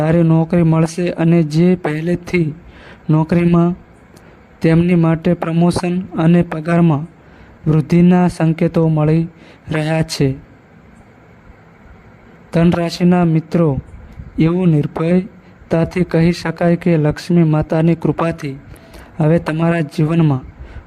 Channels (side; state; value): both; identical; correlation 1.00